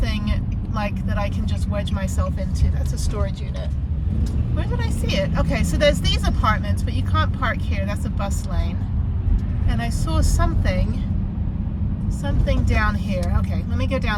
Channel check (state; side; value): identical; both; correlation 1.00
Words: like that I can just wedge myself into. That's a storage unit. Where did I see it? Okay, so there's these apartments, but you can't park here. That's a bus lane. And I saw something down here. Okay, let me go